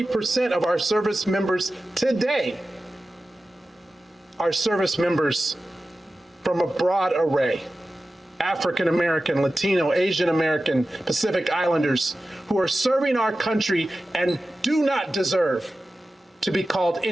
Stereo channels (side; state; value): both; normal; correlation 0.94